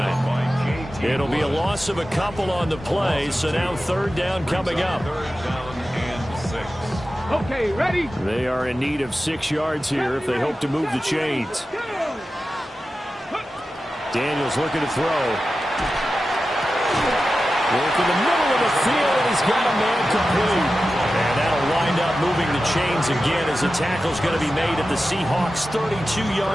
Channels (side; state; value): both; normal; correlation 0.93